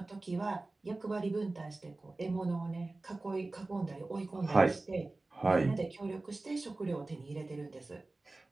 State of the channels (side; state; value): left; quieter; 3.1 dB